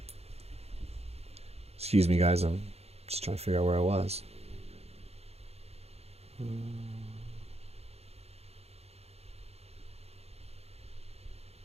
Excuse me, guys. I'm just trying to figure out where I was.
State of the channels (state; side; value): late; left; 0.30 ms